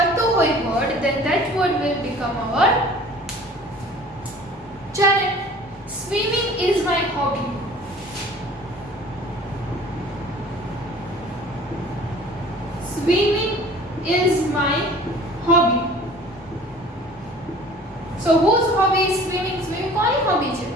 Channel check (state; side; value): normal; both; correlation 0.47